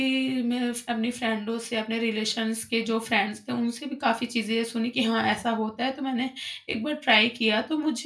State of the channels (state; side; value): identical; both; correlation 1.00